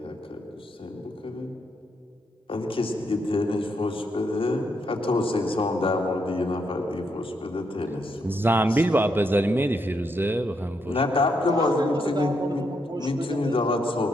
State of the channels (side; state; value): both; normal; correlation 0.78